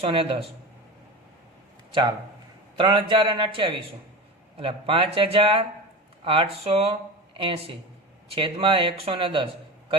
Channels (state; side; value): normal; both; correlation 0.28